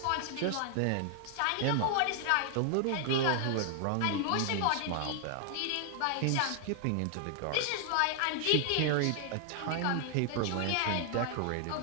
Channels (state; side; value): different; both; correlation 0.00